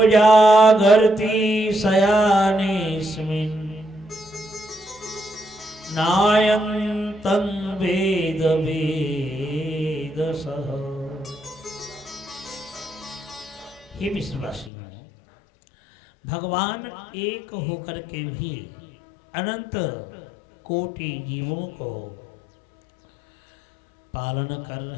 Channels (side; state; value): right; drops out; at 14.7 s